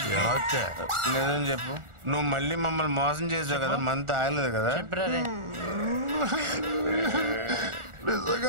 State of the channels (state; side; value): late; left; 1.4 ms